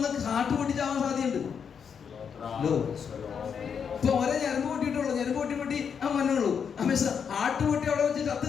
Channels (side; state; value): right; quieter; 7.0 dB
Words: കാട്ടു പൊട്ടിച്ചാവാൻ സാധ്യതയുണ്ട്. ഇപ്പൊ ഒരേ ഞരമ്പ് പൊട്ടിയിട്ടുള്ളൂ, ഞരമ്പ് പൊട്ടി മണ്ണുള്ളൂ. ആട്ടുപൊട്ടി അവിടെ വെച്ച് ചത്തു